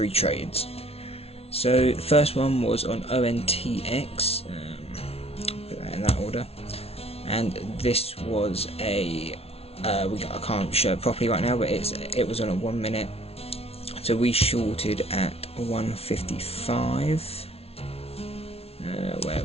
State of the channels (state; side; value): late; right; 0.30 ms